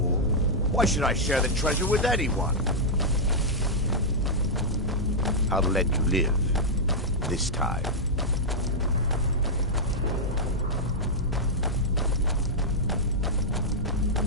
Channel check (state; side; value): normal; both; correlation -0.07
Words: Why should I share the treasure with anyone? I'll let you live. This time.